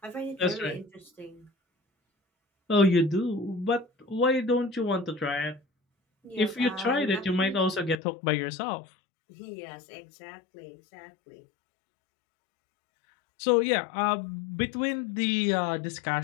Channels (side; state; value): right; drops out; at 8.0 s